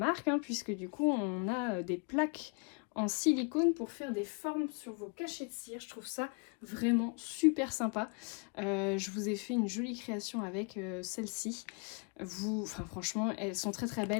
hein, puisque, du coup, on a des plaques en silicone pour faire des formes sur vos cachets de cire. Je trouve ça vraiment super sympa. Je vous ai fait une jolie création avec celle-ci. Enfin franchement, elles sont très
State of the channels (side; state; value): right; quieter; 37.1 dB